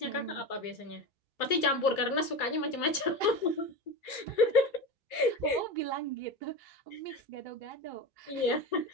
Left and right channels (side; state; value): right; late; 3.1 ms